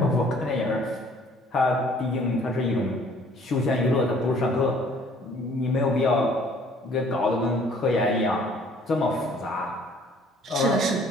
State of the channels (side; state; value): both; normal; correlation 0.57